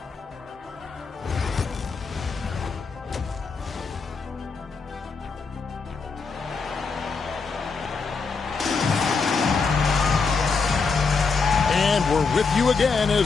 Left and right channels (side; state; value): right; quieter; 4.8 dB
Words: And we're with you again